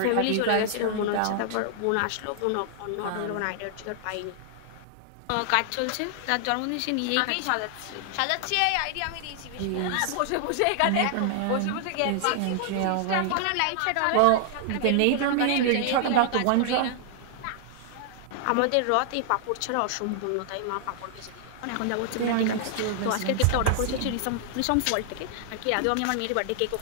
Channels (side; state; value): both; different; correlation 0.00